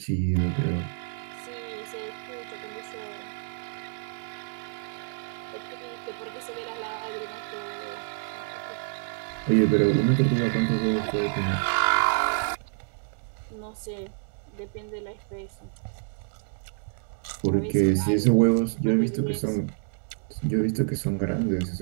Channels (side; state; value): left; silent; 59 dB below the other